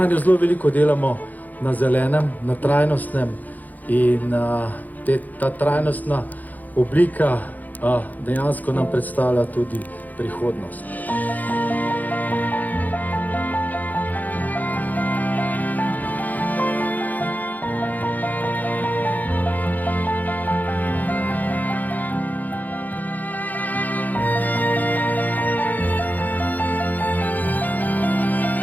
zelo veliko delamo na zelenem, na trajnostnem in ta trajnostna oblika dejansko nam predstavlja tudi prihodnost.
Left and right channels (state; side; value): late; right; 0.082 ms